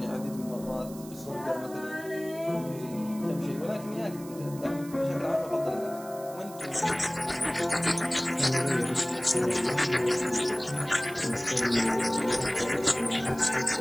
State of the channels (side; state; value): right; noise; hiss, 18 dB below the sound